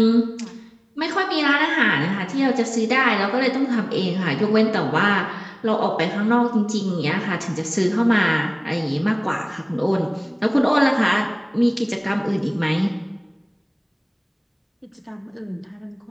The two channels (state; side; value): identical; both; correlation 1.00